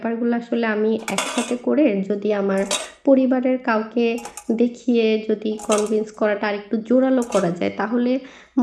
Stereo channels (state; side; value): identical; both; correlation 1.00